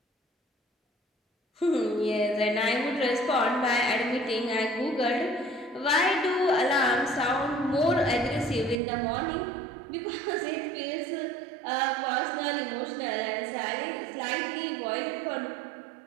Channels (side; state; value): left; drops out; at 8.8 s